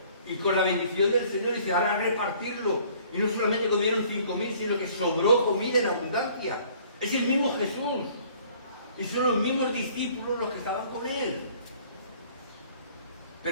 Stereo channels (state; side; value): inverted; both; correlation -0.56